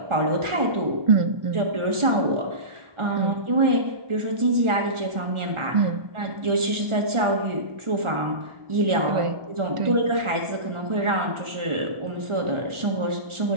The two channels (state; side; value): late; left; 1.4 ms